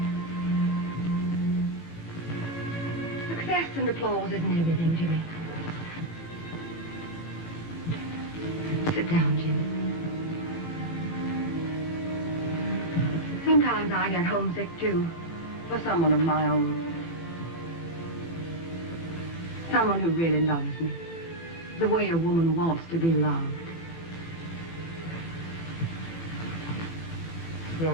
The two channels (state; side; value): late; right; 18 ms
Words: Success and applause isn't everything, Jimmy. Sit down, Jimmy. Sometimes I get homesick, too, for someone of my own. Someone who really loves me, the way a woman wants to be loved.